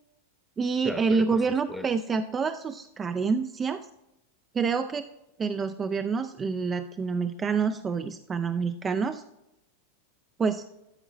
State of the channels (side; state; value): left; quieter; 4.7 dB